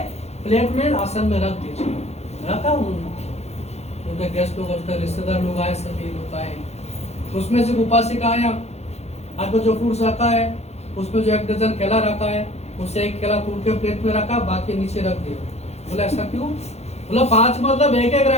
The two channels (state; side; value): late; right; 0.31 ms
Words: प्लेट में आसन में रख दीजिए। रखा उन्होंने। उनके गेस्ट लोग, उनके रिश्तेदार लोग आए, सभी लोग आए। तो उसमें से उपासिका आया, आपको जो फ्रूट्स रखा है उसमें जो 1 डजन केला रखा है, उससे 1 केला तोड़ के प्लेट में रखा, बाकी नीचे रख दिया। बोला ऐसा क्यों? बोला 5 मतलब 1-1